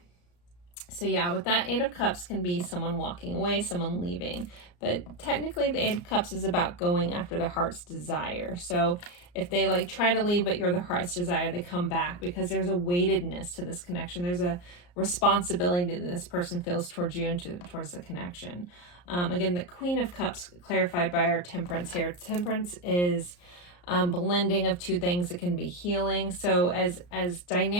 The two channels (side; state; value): right; late; 34 ms